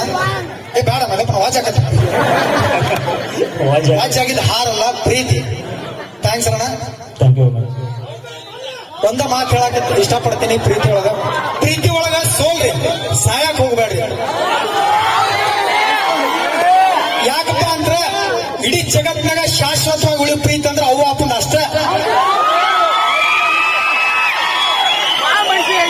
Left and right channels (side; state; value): both; identical; correlation 1.00